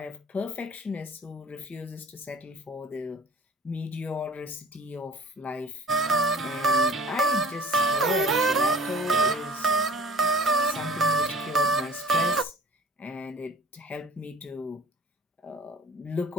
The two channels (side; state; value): both; normal; correlation 0.47